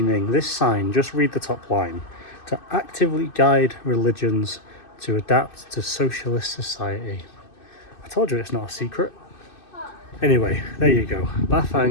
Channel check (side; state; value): right; late; 2.6 ms